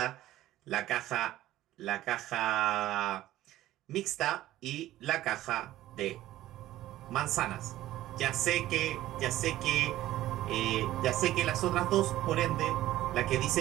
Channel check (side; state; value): left; quieter; 14.8 dB